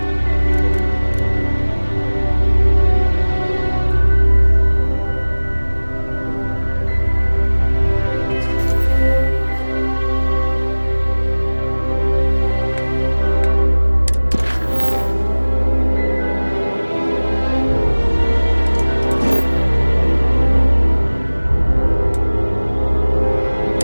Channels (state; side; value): inverted; both; correlation -1.00